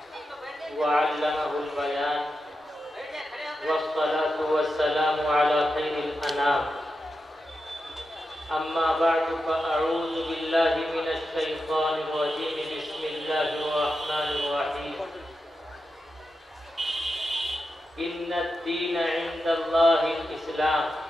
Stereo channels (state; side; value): normal; both; correlation 0.89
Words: व अल्लमहुल बयान वस्सलातु वस्सलामु अला खैरिल अनाम। अम्मा बअदु फ़अऊज़ु बिल्लाहि मिनश शैतानिर रजीम। बिस्मिल्लाहिर रहमानिर रहीम। इन्नद-दीन इंदल्लाहिल इस्लाम।